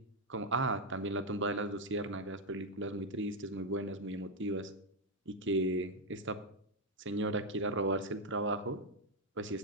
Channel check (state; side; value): normal; both; correlation 0.02